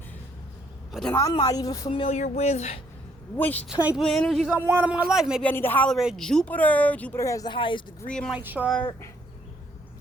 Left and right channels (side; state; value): both; normal; correlation 0.68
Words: But then I'm not even familiar with which type of energies I want in my life. Maybe I need to holler at Jupiter. Jupiter has the highest degree in my chart.